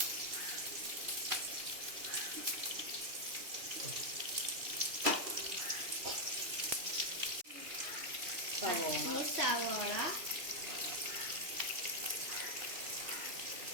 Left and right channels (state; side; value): late; left; 2.8 ms